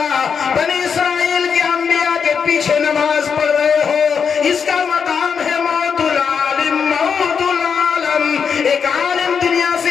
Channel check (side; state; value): right; quieter; 6.5 dB